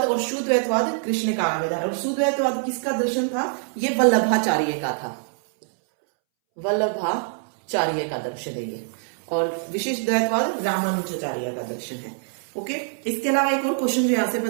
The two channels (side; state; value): left; silent; 63 dB below the other